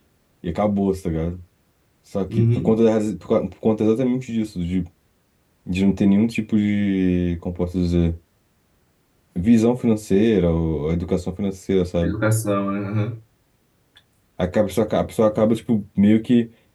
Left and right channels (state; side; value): identical; both; correlation 1.00